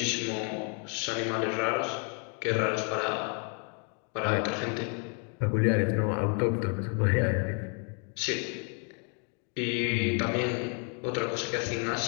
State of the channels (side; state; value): right; quieter; 38.9 dB